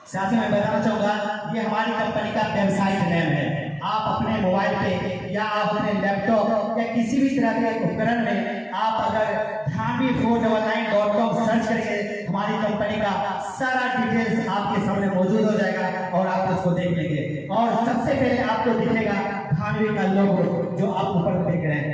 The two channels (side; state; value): both; identical; correlation 1.00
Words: साथियों, मैं बताना चाहूंगा, ये हमारी कंपनी का वेबसाइट नेम है। आप अपने मोबाइल पे या आप अपने लैपटॉप या किसी भी तरह के उपकरण में आप अगर Dhanvi499.com सर्च करेंगे, हमारी कंपनी का सारा डिटेल्स आपके सामने मौजूद हो जाएगा और आप उसको देख लेंगे। और सबसे पहले आपको दिखेगा धानवी का लोगो, जो आप ऊपर देख रहे